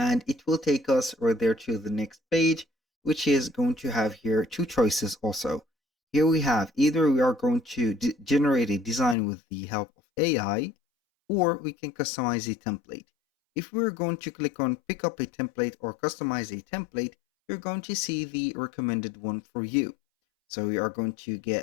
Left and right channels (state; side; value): drops out; right; at 9.2 s